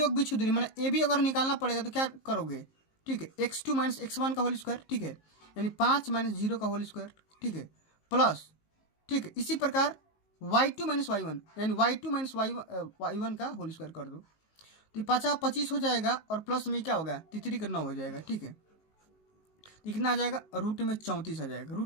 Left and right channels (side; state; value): right; late; 19 ms